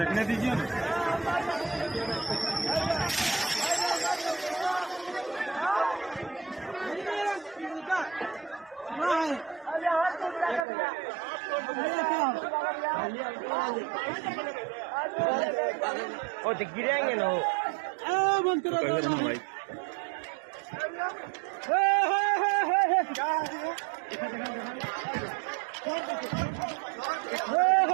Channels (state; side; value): drops out; left; at 10.7 s